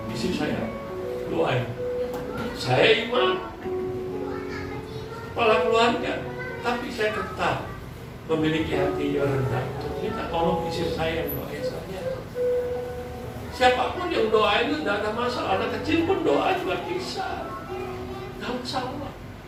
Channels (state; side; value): identical; both; correlation 1.00